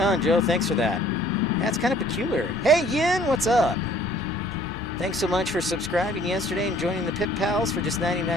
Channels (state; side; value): normal; both; correlation 0.57